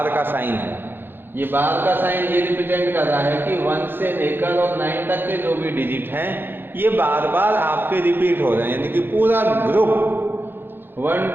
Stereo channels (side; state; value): left; late; 0.10 ms